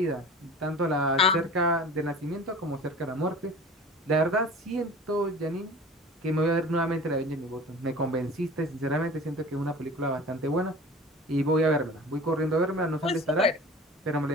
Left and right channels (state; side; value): normal; both; correlation 0.40